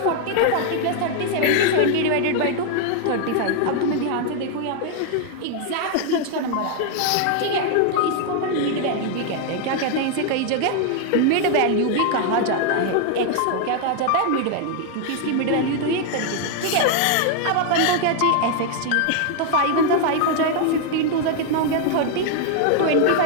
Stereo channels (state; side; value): different; both; correlation 0.00